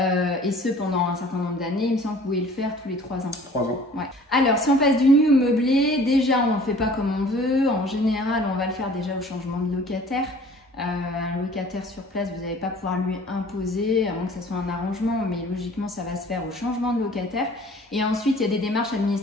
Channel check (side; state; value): both; normal; correlation 0.50